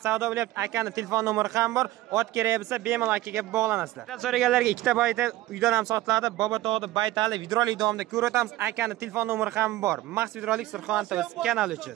savdo bo'lyapti. Akani telefon nomeri ham bor. Ot kerak bo'lsa bemalol akaga bog'lanasizlar. So'raganlarga ikkita baytal uydan ham sotiladi. Bobotog'da baytali videolik davomida ko'rsatamiz. Akani telefon nomeri ham bor. Max videolik Surxondaryo kanali uchun.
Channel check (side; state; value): left; quieter; 16.8 dB